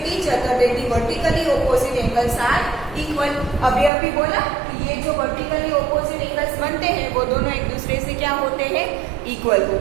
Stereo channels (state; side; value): drops out; left; at 3.9 s